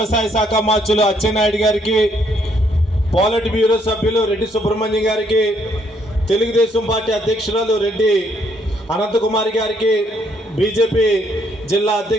శాఖ మంత్రులు అచ్చెన్నాయుడు గారికి, పాలిట్ బ్యూరో సభ్యులు రెడ్డి సుబ్రహ్మణ్యం గారికి, తెలుగుదేశం పార్టీ అధ్యక్షురాలు రెడ్డి అనంతకుమారి గారికి, బీజేపీ జిల్లా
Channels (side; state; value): both; normal; correlation 0.70